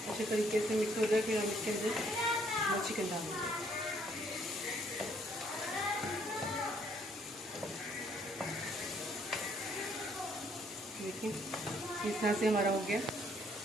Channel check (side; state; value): both; normal; correlation 0.66